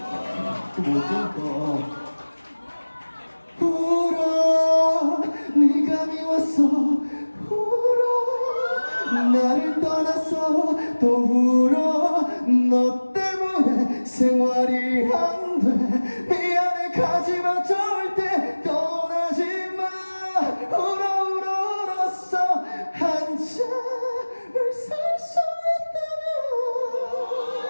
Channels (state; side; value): inverted; both; correlation -1.00